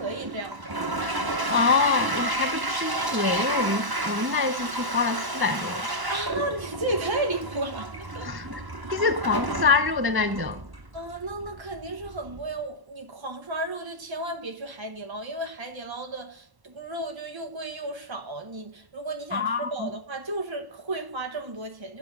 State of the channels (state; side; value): late; left; 1.1 ms